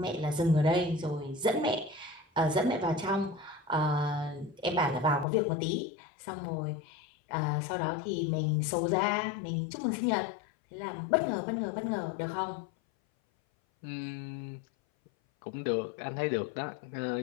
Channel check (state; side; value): drops out; right; at 5.2 s